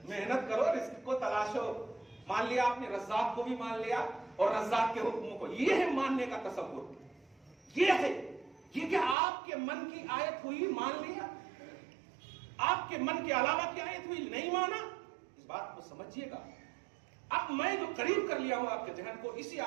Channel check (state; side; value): drops out; left; at 9.2 s